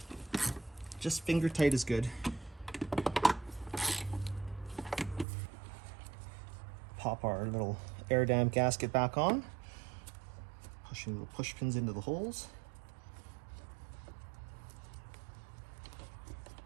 Just finger tight is good. Pop our little air dam gasket back on, pushing little push pins into the holes.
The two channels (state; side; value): drops out; left; at 5.2 s